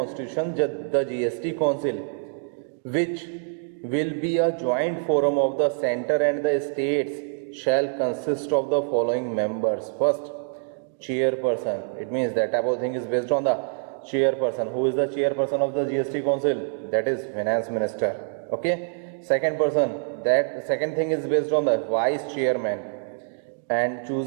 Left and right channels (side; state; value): left; silent; digital silence